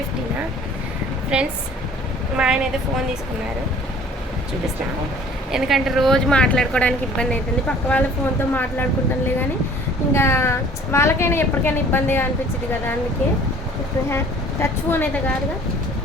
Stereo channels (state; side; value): normal; both; correlation 0.51